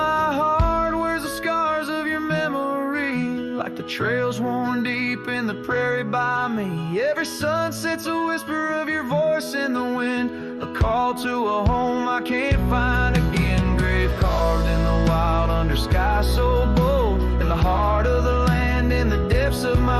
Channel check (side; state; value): both; identical; correlation 1.00